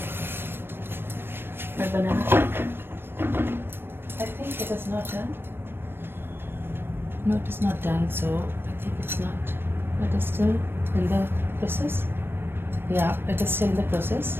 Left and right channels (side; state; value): left; late; 0.10 ms